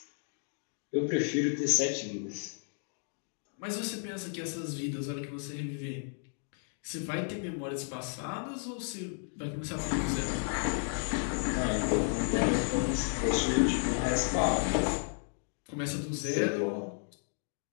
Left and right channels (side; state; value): right; silent; 56 dB below the other